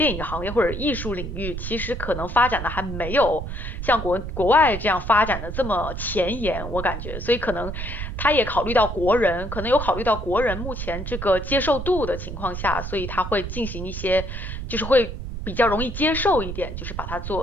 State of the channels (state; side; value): noise; right; rumble, 6 dB below the sound